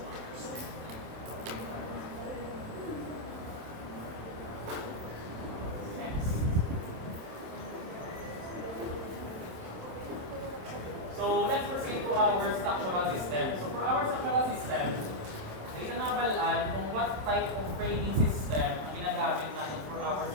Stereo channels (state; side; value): late; left; 27 ms